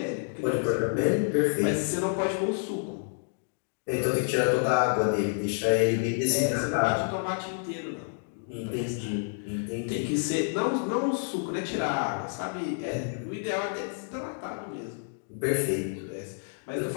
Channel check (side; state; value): right; silent; digital silence